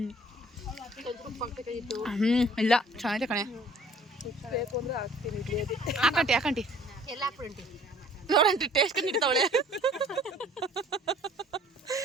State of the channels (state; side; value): normal; both; correlation 0.54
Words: ಇಲ್ಲ ಚೆನ್ನಾಗಿದೆ ಕಣೆ ಹಾಕಂಟಿ ಹಾಕಂಟಿ ಎಲ್ಲ ಹಾಕ್ಬಿಡಿ ನೋಡಂಟಿ ಟೇಸ್ಟ್ ನೀಡ್ತಾವಳೆ